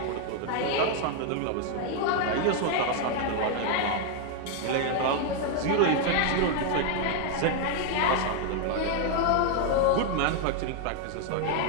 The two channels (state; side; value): different; both; correlation 0.00